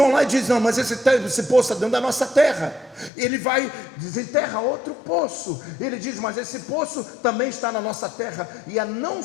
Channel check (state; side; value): drops out; right; at 3.1 s